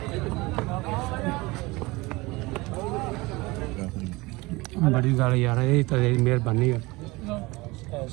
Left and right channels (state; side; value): quieter; left; 22.7 dB